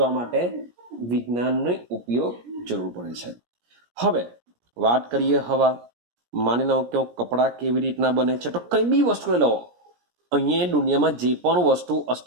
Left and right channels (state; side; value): late; left; 17 ms